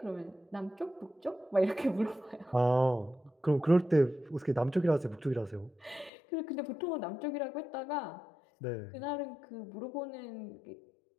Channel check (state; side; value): drops out; right; at 6.1 s